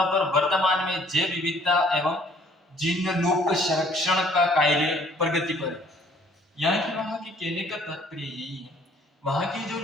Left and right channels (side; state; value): both; normal; correlation 0.59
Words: पर वर्तमान में जैव विविधता एवं जिनलुप्त संरक्षण का कार्य प्रगति पर है। यहाँ की वहां की कहने का तात्पर्य यही है, वहां की जो